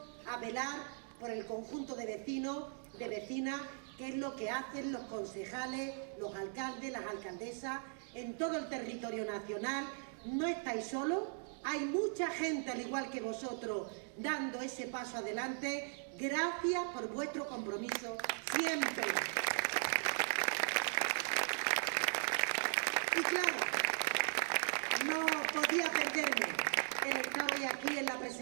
a velar por el conjunto de vecinos, de vecinas, que es lo que hacen los concejales, los alcaldes, las alcaldesas en todo el territorio nacional. No estáis solos, hay mucha gente al igual que vosotros dando ese paso adelante. Gracias por vuestro compromiso siempre. Y claro, no podía perderme el estar hoy aquí en la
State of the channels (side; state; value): left; silent; 52 dB below the other